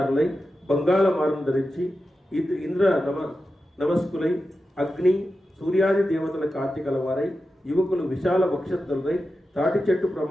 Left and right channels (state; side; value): normal; both; correlation 0.91